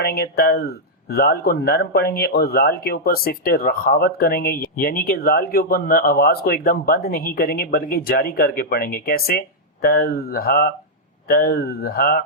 گے، زال کو نرم پڑھیں گے اور زال کے اوپر صفت رخاوت کریں گے، یعنی کہ زال کے اوپر آواز کو ایک دم بند نہیں کریں گے بلکہ جاری کر کے پڑھیں گے۔ کیسے؟ تزہا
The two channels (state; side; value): normal; both; correlation -0.06